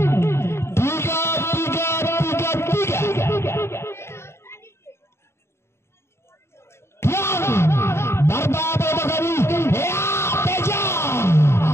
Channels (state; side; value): late; right; 0.13 ms